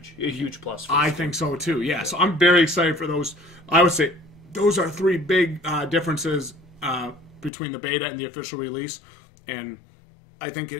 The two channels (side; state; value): right; drops out; at 7.5 s